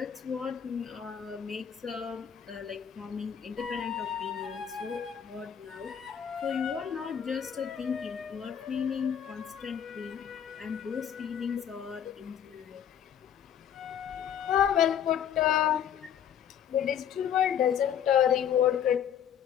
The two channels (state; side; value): quieter; right; 8.9 dB